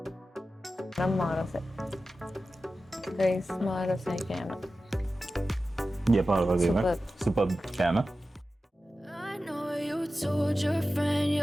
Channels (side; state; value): both; normal; correlation 0.94